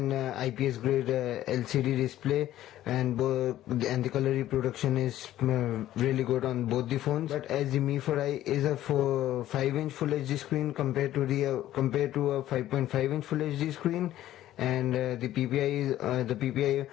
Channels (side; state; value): right; quieter; 13.5 dB